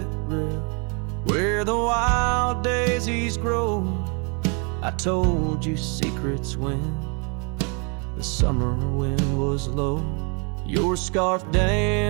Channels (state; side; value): quieter; left; 35.0 dB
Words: rail, where the wild daisies grow, I told you secrets when the summer wind was low. Your scarf